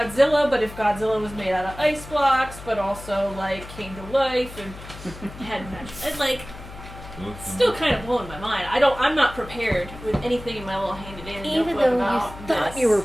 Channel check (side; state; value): left; noise; hum, 14 dB below the sound